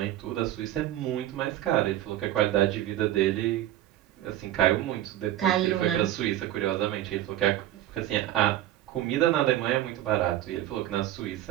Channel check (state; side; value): quieter; left; 13.4 dB